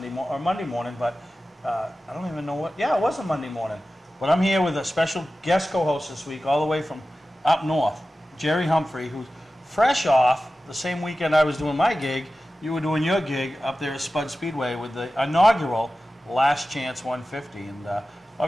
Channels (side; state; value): both; normal; correlation 0.95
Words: or Monday morning, but I don't even know what, yeah, it was a Monday morning. But I'm here with a special guest co-host this week, all the way from up north, Jerry Humphrey, who's fresh off the same weekend I was doing my gig. You were doing your gig up there at Spud Speedway with the inaugural Last Chance 150. And